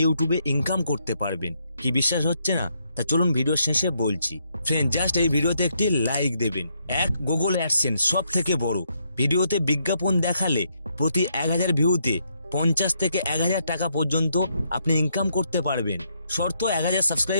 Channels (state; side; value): inverted; both; correlation -0.76